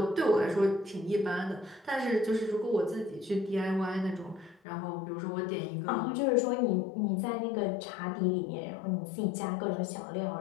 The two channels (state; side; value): drops out; right; at 4.6 s